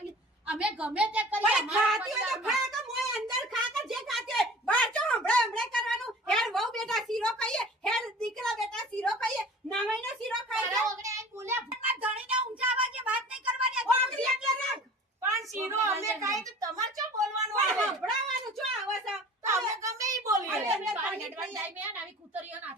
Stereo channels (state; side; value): normal; both; correlation 0.43